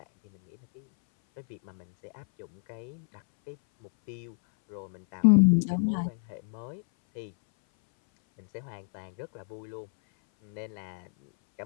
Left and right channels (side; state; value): right; silent; 58 dB below the other